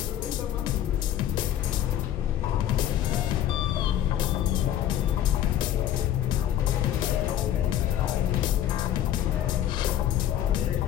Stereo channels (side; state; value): right; quieter; 11.4 dB